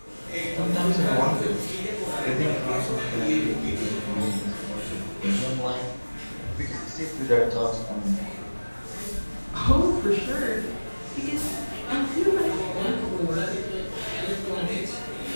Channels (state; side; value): inverted; both; correlation -1.00